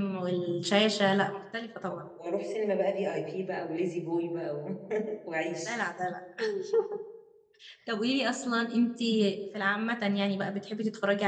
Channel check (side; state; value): both; identical; correlation 1.00